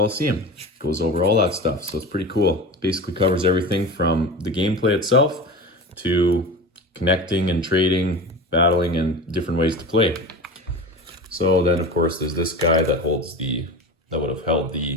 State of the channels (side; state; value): both; normal; correlation 0.30